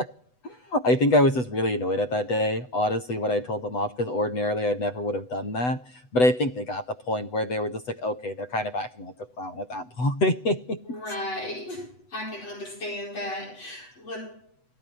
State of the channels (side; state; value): right; late; 8.0 ms